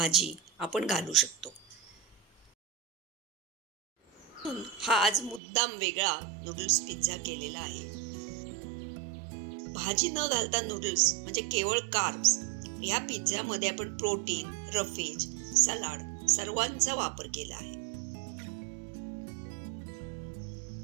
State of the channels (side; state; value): left; drops out; at 5.4 s